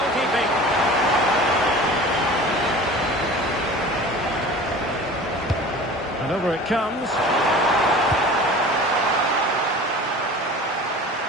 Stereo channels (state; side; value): normal; both; correlation 0.40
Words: And over it comes.